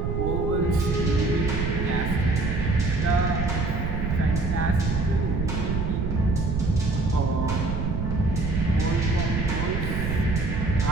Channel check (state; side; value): noise; right; rumble, 1 dB below the sound